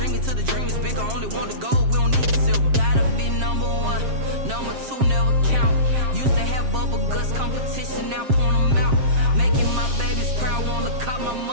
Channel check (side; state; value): left; late; 7.5 ms